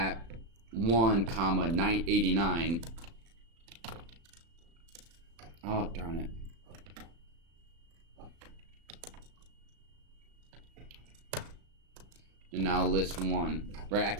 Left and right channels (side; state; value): left; late; 36 ms